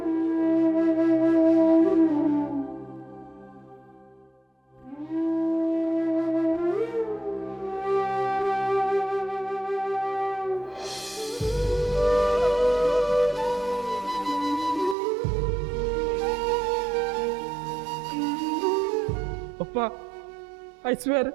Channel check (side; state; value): left; drops out; at 15.0 s